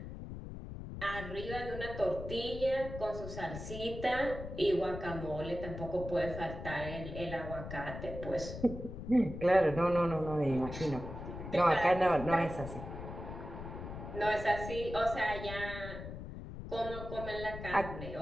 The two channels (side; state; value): left; noise; rumble, 9 dB below the sound